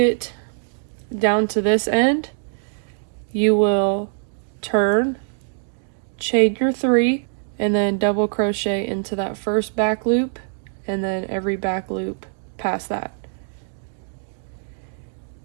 down to this end, you will turn, chain your 3, and then double crochet into that first back loop, and then every back loop past that.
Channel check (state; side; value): silent; left; digital silence